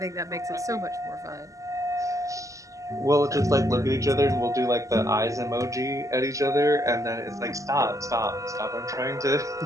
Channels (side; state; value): left; late; 0.16 ms